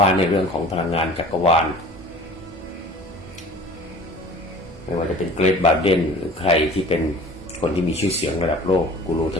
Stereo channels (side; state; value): both; normal; correlation 0.44